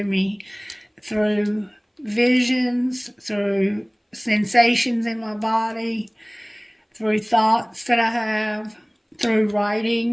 me, through visions, through sensations in my body, through thoughts that I have, through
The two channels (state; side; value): identical; both; correlation 1.00